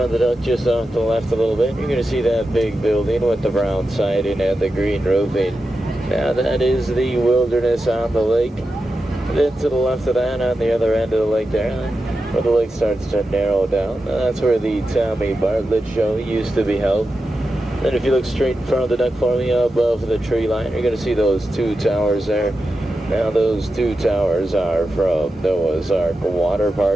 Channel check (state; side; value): normal; both; correlation 0.90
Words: of the duck, just off to the left a little bit, you're going to see that big building with the brown siding and the green roofing. Now that is the Wilderness on the lake. Then to the left of that, on the other end of the lake there, where the lake starts to narrow down, that's where the Tommy Bartlett show used to be held. Then if you look straight in front of the duck for me, above the tree line, you're going to see those two towers there. Now those two towers are from Noah's Ark Water